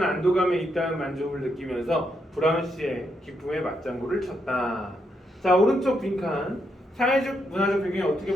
안도감에 잇따른 만족을 느끼면서 브라운 씨의 기쁨에 맞장구를 쳤다. 자, 오른쪽 빈칸 사회적 문화적 배경이 어떻게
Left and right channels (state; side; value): normal; both; correlation 0.79